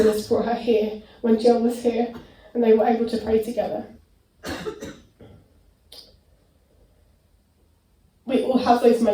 brought her here when Jill was here, and they were able to pray together. We all have those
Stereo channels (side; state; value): both; identical; correlation 1.00